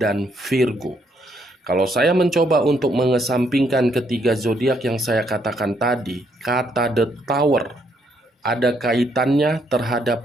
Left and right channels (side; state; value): both; normal; correlation 0.72